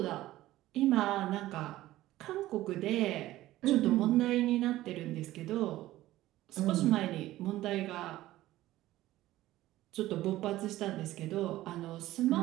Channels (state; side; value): quieter; left; 15.7 dB